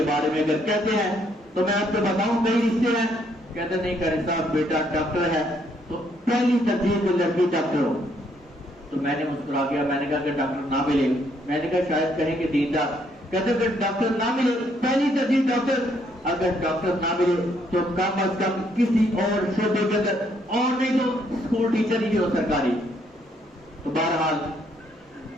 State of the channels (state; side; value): normal; both; correlation 0.70